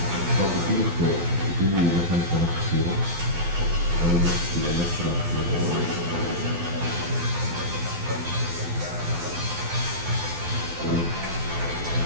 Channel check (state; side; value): late; left; 12 ms